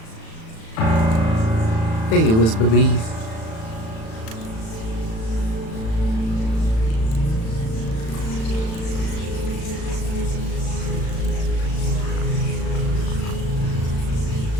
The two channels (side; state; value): right; late; 36 ms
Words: are. There you is, baby.